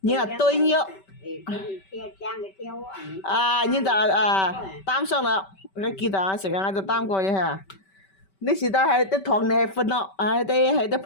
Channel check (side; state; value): right; late; 5.2 ms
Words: 然後對咗。啊，然就擔上啦，你記得啊，成日我就擔過嘢嚇。你時代係啲糖你係分咯，係啲